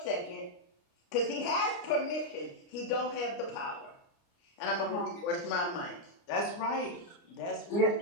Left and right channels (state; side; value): late; right; 29 ms